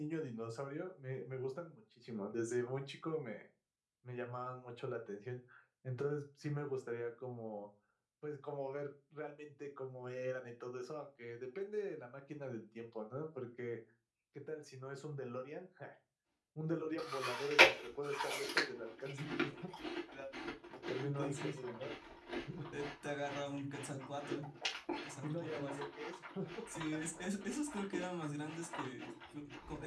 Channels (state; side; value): identical; both; correlation 1.00